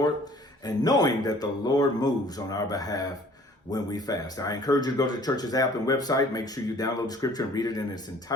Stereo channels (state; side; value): normal; both; correlation 0.53